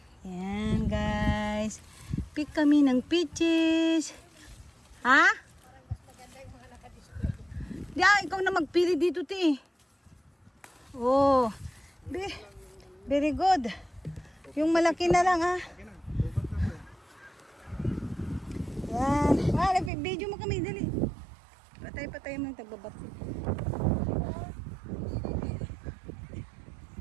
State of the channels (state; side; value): drops out; left; at 19.9 s